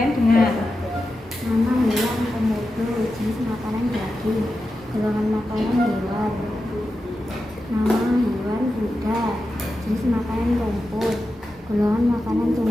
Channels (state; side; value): normal; both; correlation 0.90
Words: dengar. Nama hewan komodo, jenis makanan daging. Golongan makanan hewan. Nama hewan kuda, jenis makanan rumput. Golongan makanan